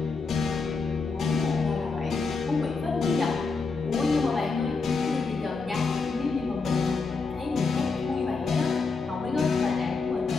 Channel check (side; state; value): right; quieter; 4.4 dB